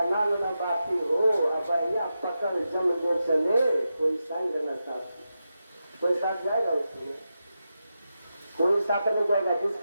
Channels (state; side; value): inverted; both; correlation -0.89